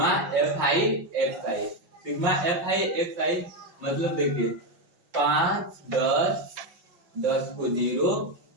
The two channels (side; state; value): left; late; 5.6 ms